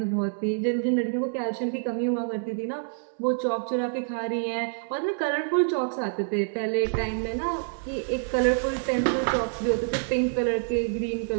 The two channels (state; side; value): silent; left; 60 dB below the other